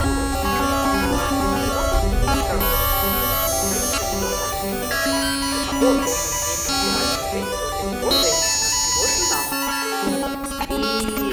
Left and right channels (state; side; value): identical; both; correlation 1.00